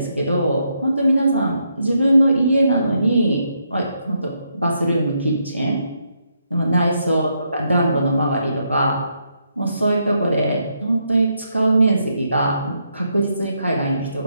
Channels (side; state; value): both; inverted; correlation -0.78